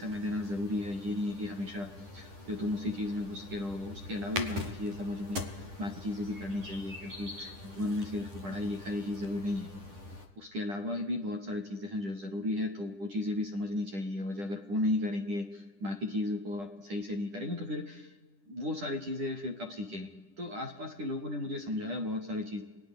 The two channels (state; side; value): late; left; 10 ms